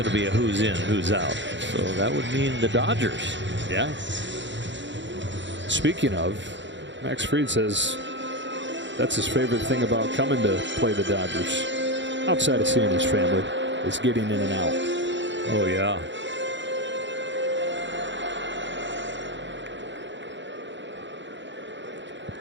to be a who's in, who's out. So that would mean the Dodgers. Yeah. Speaking of, Max Fried says that's his favorite thing about coming to play the Dodgers, outside of seeing his family, is getting in and out. Oh, yeah.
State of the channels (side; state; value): left; late; 0.53 ms